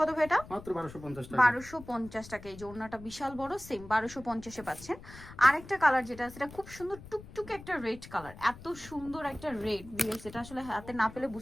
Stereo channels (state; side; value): noise; left; rumble, 17 dB below the sound